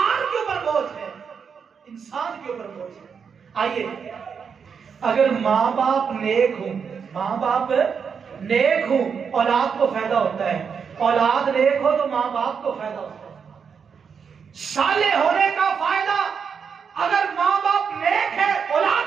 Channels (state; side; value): quieter; left; 6.4 dB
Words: کے اوپر بوجھ ہے، انسان کے اوپر بوجھ ہے۔ آئیے، اگر ماں باپ نیک ہوں، ماں باپ نیک ہوں، اولاد کو فائدہ ہوتا ہے، اولاد نیک ہو تو ماں باپ کو فائدہ ہوتا ہے۔ صالح ہونے کا فائدہ، اگر ماں باپ نیک ہے